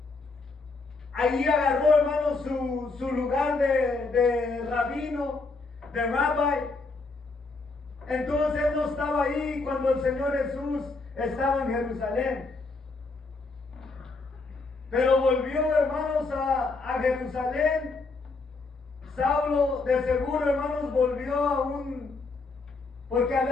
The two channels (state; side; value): quieter; right; 3.8 dB